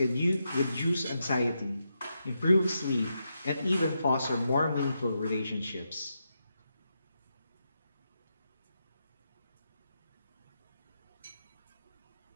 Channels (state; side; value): inverted; both; correlation -0.85